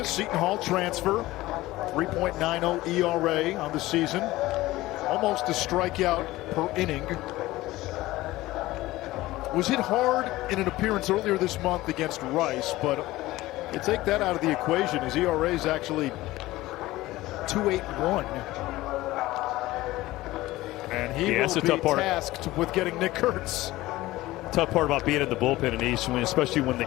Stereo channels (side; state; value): right; quieter; 17.7 dB